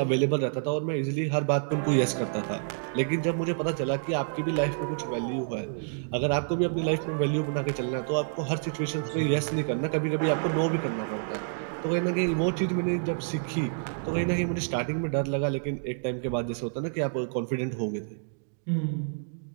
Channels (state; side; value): silent; left; digital silence